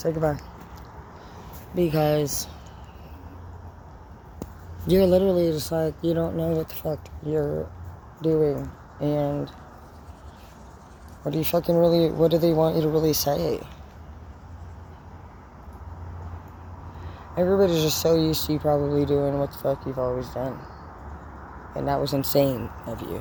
goodbye. Because you're literally just like, you don't know what the fuck you're doing, and what do they want you to really say? Everybody's just so used to you probably doing what the fuck you've always done, and that was insane of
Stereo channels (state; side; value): identical; both; correlation 1.00